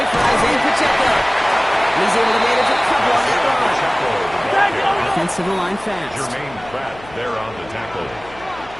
for Isaiah Pacheco. He's able to manage a couple on that run. Offensive line fast. Jermaine Pratt there on the tackle.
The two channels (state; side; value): noise; left; hum, 20 dB below the sound